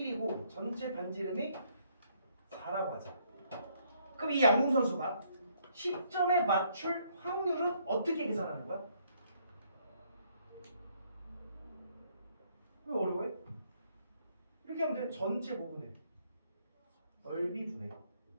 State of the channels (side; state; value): both; inverted; correlation -0.68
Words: 전체 반지름이 4라고 하자. 그럼 이 양궁 선수가 10점에 맞출 확률은 어떻게 계산하는 거야? 왜 어려워해? 이렇게 하면 돼. 전체 모분에 넓이 분해.